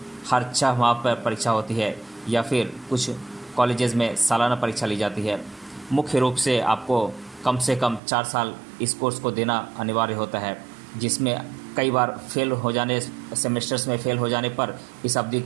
हर 6 माह पर परीक्षा होती है, या फिर कुछ कॉलेजेस में सालाना परीक्षा ली जाती है। मुख्य रूप से आपको कम से कम 4 साल इस कोर्स को देना अनिवार्य होता है, जिसमें कई बार सेमेस्टर्स में फेल हो जाने पर इस अवधि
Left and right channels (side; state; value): left; drops out; at 8.0 s